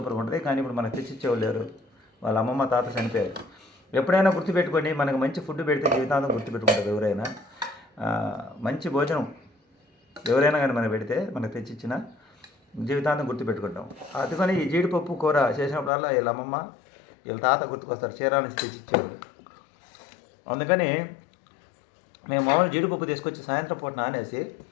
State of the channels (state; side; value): drops out; right; at 15.9 s